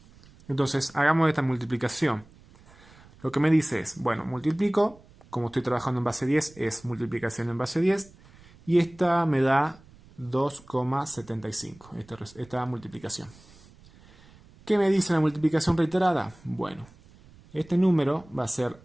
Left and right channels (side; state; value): right; noise; rumble, 25 dB below the sound